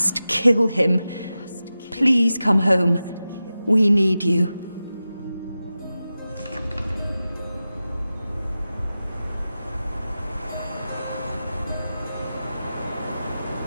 kill him. Please come home. We need you.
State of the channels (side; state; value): both; inverted; correlation -0.94